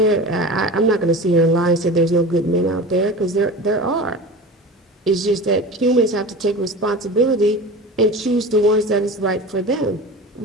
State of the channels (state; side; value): normal; both; correlation 0.33